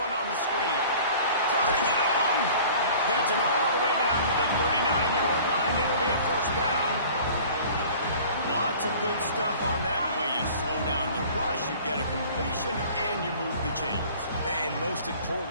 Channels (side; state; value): both; inverted; correlation -0.46